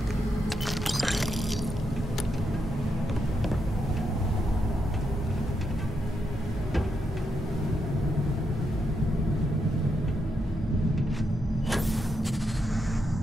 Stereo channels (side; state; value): both; normal; correlation 0.82